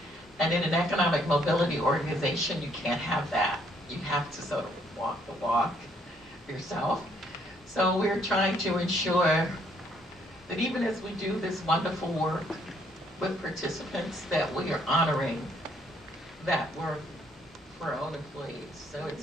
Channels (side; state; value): both; normal; correlation 0.67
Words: And in an economic mobility organization, you can't have that. You have to sort of walk the walk yourself. So we're trying to ensure that even as we do this wonderful work with participants, that we are honoring that work for our own employees. So